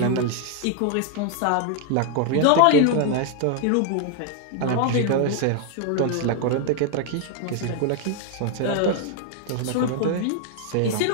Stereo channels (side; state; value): both; different; correlation 0.01